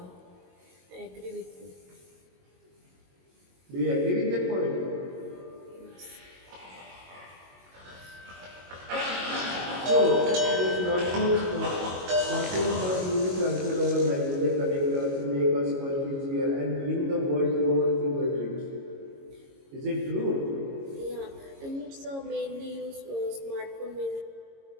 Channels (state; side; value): late; left; 22 ms